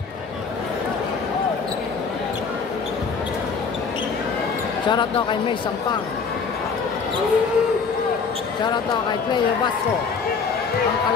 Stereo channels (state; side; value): quieter; right; 5.3 dB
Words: Shoutout daw kay May Sampang. Shoutout daw kay Player Basco, ang